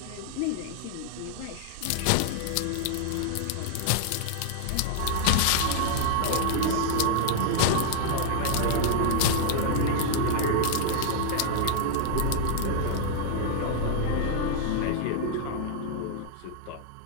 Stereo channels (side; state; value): both; different; correlation 0.00